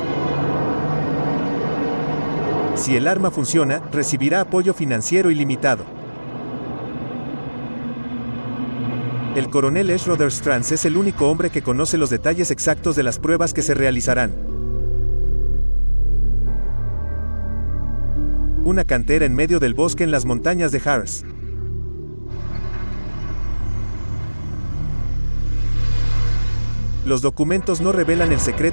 Si el arma funciona, recibirá apoyo financiero ilimitado. El coronel Schroeder Stranz es el único hombre que conoce los detalles exactos de las pruebas que se realizarán. Una cantera en medio del bosque en las montañas de Harz. Los documentos no revelan el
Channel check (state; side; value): inverted; both; correlation -1.00